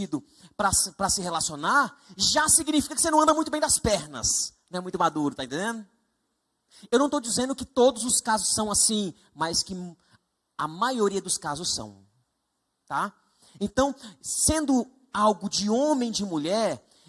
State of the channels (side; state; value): both; identical; correlation 1.00